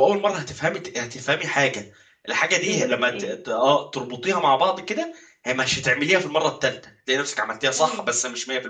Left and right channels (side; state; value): both; identical; correlation 1.00